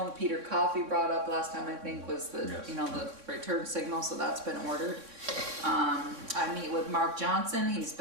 that Peter Coffey brought up last time, I think, was the, Yes. you know, the return signal, so that's been ordered. I meet with Mark Johnson. He's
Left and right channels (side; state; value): left; late; 3.6 ms